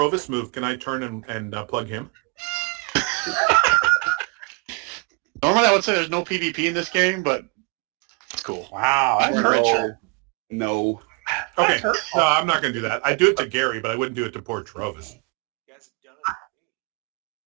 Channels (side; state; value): left; quieter; 31.5 dB